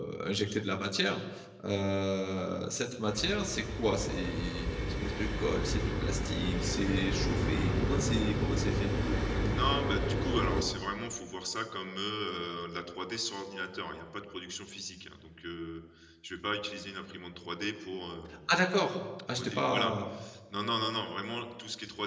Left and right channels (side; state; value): both; identical; correlation 1.00